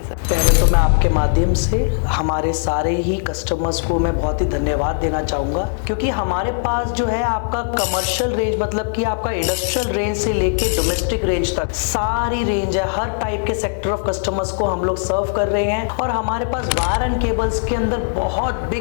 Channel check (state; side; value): silent; right; digital silence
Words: सर। पहले तो मैं आपके माध्यम से हमारे सारे ही कस्टमर्स को मैं बहुत ही धन्यवाद देना चाहूँगा, क्योंकि हमारे पास जो है आपका कमर्शियल रेंज मतलब कि आपका इंडस्ट्रियल रेंज से लेके डोमेस्टिक रेंज तक सारी रेंज है। हर टाइप के सेक्टर ऑफ कस्टमर्स को हम लोग सर्व कर रहे हैं और हमारे पास वायर एंड केबल्स के अंदर बहुत